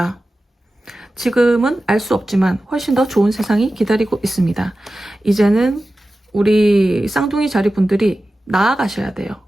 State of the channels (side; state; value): both; normal; correlation 0.94